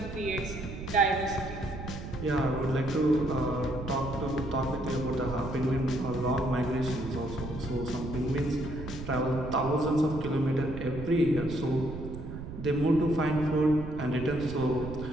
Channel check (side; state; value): right; noise; rumble, 9 dB below the sound